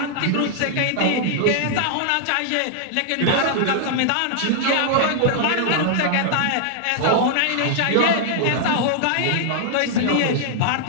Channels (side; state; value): both; different; correlation -0.01